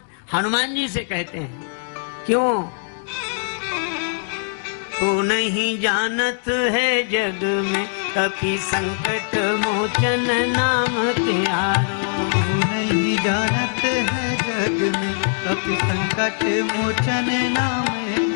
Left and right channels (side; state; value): right; silent; digital silence